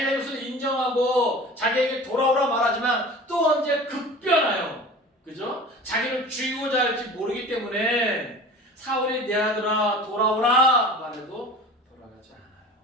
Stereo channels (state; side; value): normal; both; correlation 0.39